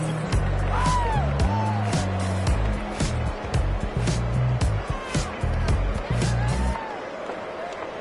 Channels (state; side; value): identical; both; correlation 1.00